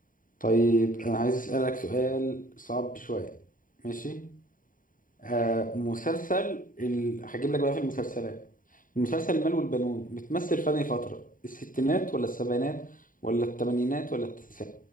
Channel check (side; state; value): right; late; 0.39 ms